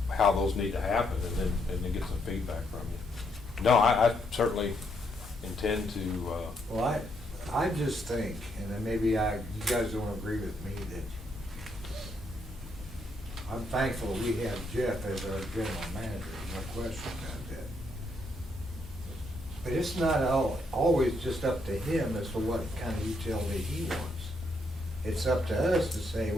how those need to happen, and then get some feedback from you. No, I certainly intend to, Well, I just think, and then maybe you guys don't agree with me, that I'm thankful we have Jeff as our general manager, no question about that. But it's not always just up to him as to what kind of utility he wants. It's up to us to say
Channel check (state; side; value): normal; both; correlation 0.75